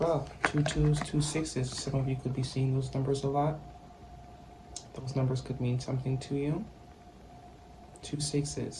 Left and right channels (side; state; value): both; identical; correlation 1.00